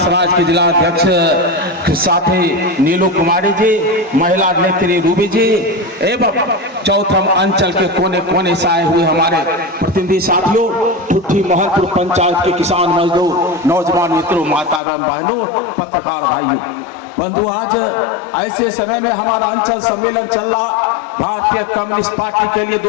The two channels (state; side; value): drops out; right; at 14.8 s